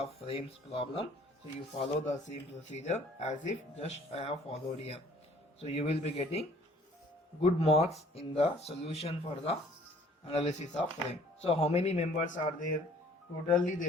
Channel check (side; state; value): both; normal; correlation 0.56